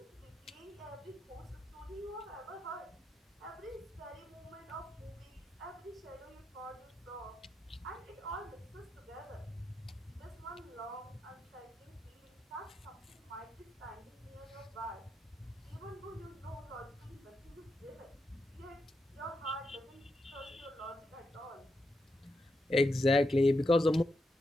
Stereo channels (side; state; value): both; normal; correlation 0.84